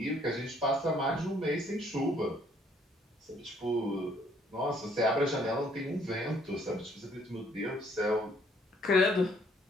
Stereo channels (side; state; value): both; normal; correlation 0.64